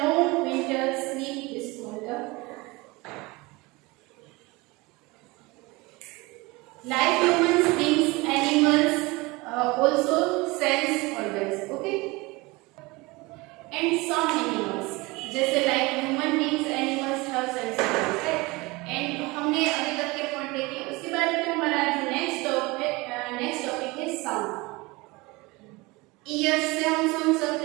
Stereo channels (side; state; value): left; quieter; 23.6 dB